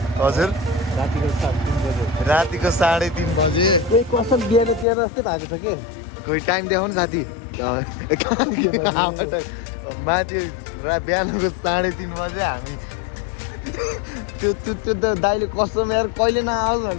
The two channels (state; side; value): drops out; right; at 4.9 s